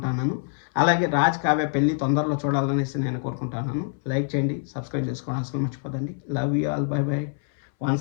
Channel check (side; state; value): right; silent; 60 dB below the other